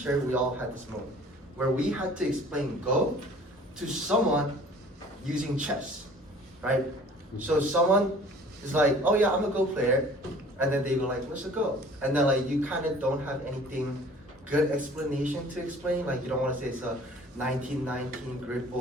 we all had this moment where we had to explain Go to someone using chess, right? So someone is like, oh yeah, I'm a Go player. And then they go like, what's a Go? And then like you kind of don't have anything good explanation to explain. Like you don't want to say it's a 1919 grid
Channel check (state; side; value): normal; both; correlation 0.49